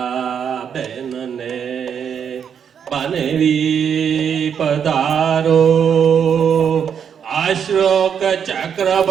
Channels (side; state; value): left; quieter; 7.7 dB